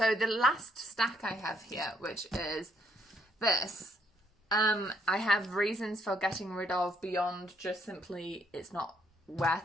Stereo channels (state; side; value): normal; both; correlation 0.69